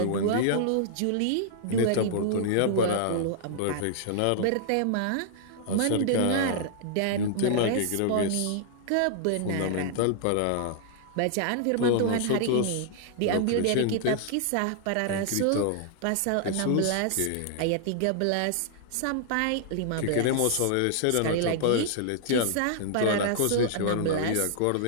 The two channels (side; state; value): both; different; correlation -0.01